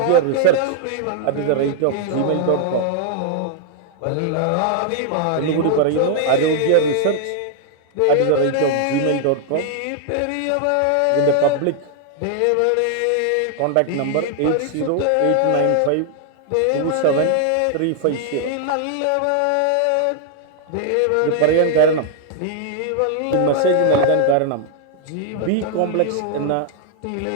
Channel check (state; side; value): different; both; correlation 0.00